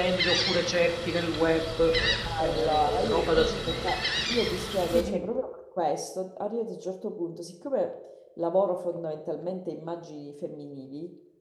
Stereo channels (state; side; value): identical; both; correlation 1.00